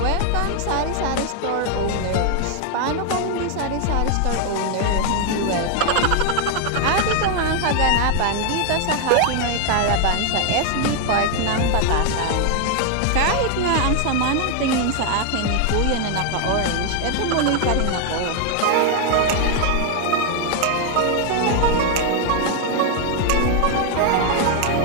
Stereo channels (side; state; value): both; different; correlation 0.00